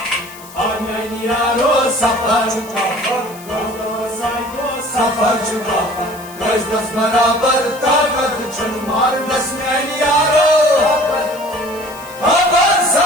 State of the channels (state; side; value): noise; left; hiss, 19 dB below the sound